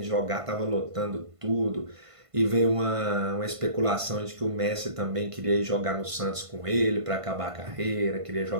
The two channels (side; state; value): left; late; 1.5 ms